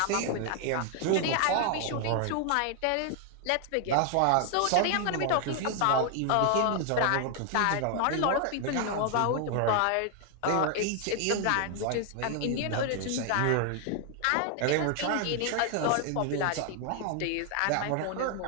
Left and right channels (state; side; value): different; both; correlation 0.00